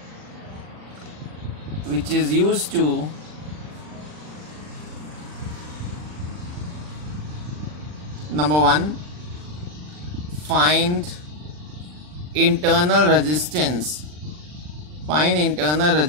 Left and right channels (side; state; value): left; late; 40 ms